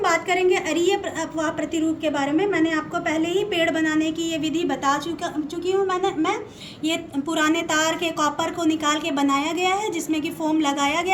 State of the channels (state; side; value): identical; both; correlation 1.00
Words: बात करेंगे अरीय अपवाह प्रतिरूप के बारे में। मैंने आपको पहले ही पेड़ बनाने की ये विधि बता चुकी हूँ। मैं ये पुराने तार के कॉपर को निकाल के बनाया गया है, जिसमें कि फोम लगाया